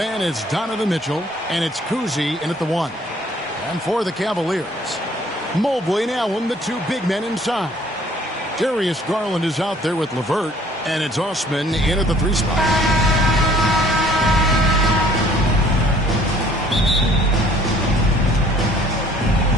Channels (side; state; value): both; normal; correlation 0.57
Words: it's Donovan Mitchell, and it's Cousy in at the 1. And for the Cavaliers, Mobley and Allen, the two big men inside. Darius Garland is out there with LeVert, and it's Osman in at the 3 spot.